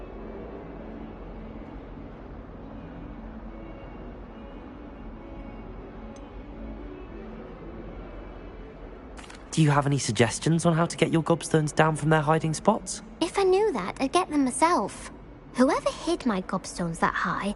Do you have any suggestions on how to get your gobstones down from their hiding spots? If I knew that, I'd get them myself. Whoever hid my gobstones that high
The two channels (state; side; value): identical; both; correlation 1.00